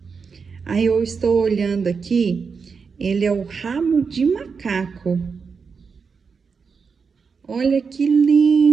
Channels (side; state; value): left; quieter; 5.5 dB